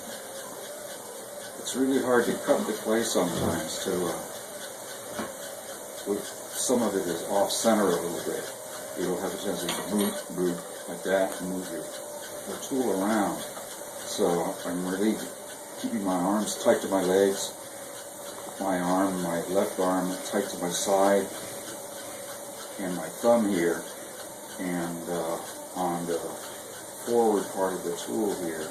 It's really hard to cut into place sometimes some of it is off center a little bit. You'll have a tendency to move like that and move your tool around. So I'm really keeping my arms tight to my legs, my left arm tight to my side, and my thumb here, and on the forward part of the tool here,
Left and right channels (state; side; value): identical; both; correlation 1.00